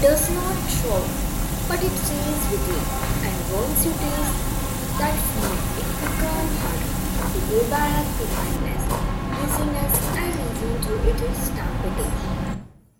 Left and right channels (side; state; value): both; identical; correlation 1.00